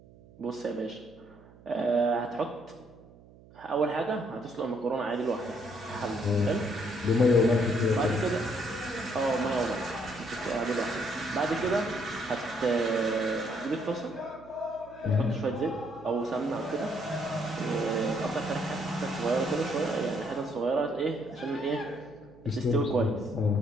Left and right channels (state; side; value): noise; right; hum, 23 dB below the sound